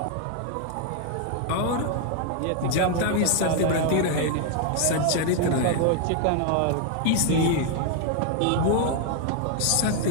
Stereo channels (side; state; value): both; different; correlation 0.00